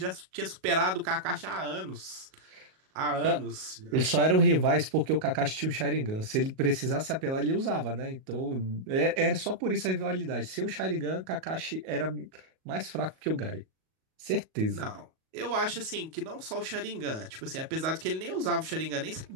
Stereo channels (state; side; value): late; left; 38 ms